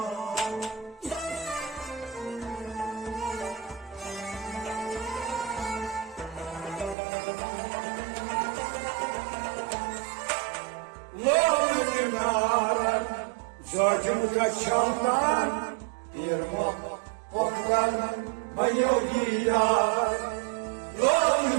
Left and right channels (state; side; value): drops out; left; at 7.0 s